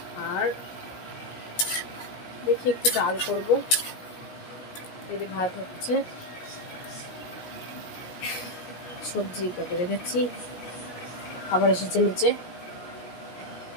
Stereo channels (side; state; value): right; late; 17 ms